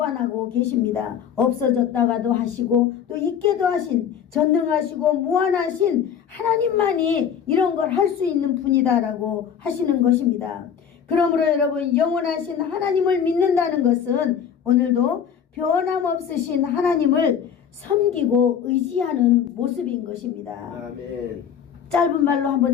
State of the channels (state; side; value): quieter; right; 8.1 dB